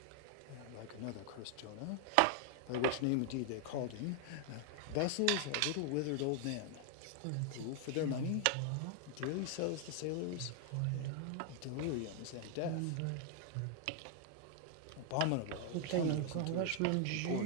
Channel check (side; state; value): both; different; correlation 0.00